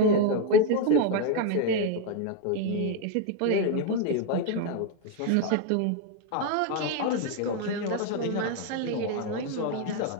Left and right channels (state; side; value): different; both; correlation 0.01